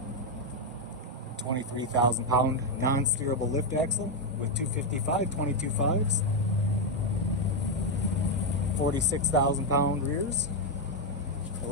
23,000-pound non-steerable lift axle with 255 22.5s, 46,000-pound rears,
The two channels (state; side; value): normal; both; correlation 0.02